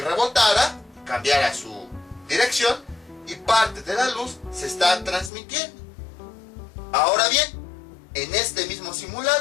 cambiara su dirección, y parte de la luz se está transmitiendo. Ahora bien, en este mismo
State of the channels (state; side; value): drops out; right; at 5.3 s